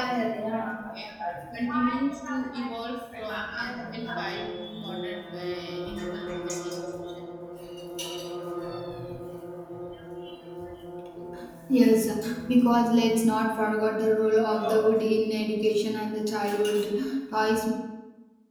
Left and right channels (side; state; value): both; identical; correlation 1.00